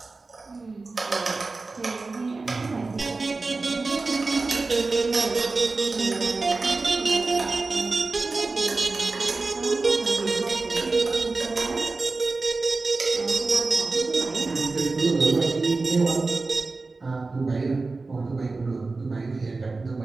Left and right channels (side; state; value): left; quieter; 3.7 dB